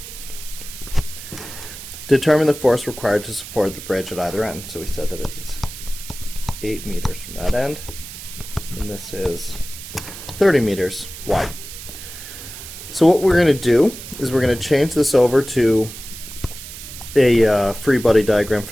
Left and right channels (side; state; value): right; noise; hiss, 12 dB below the sound